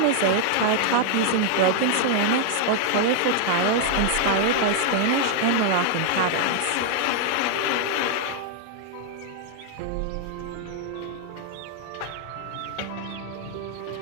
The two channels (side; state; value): both; different; correlation 0.00